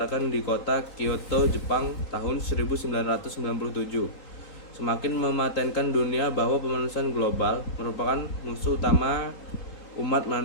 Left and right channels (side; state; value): right; late; 4.2 ms